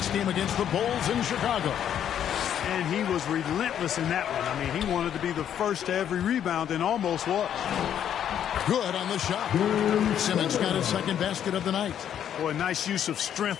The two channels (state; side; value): quieter; right; 9.6 dB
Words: game against the Bulls in Chicago. And he was relentless in that one. I mean, he wanted to be the first to every rebound and almost was. Good on the shot. Simmons got his second basket of the night. Boy, nice use of strength